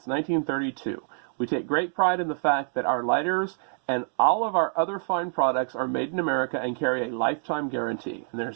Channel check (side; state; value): left; silent; digital silence